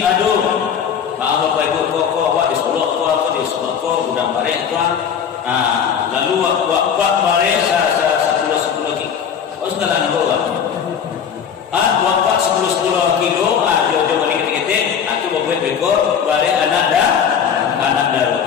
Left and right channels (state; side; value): quieter; right; 7.7 dB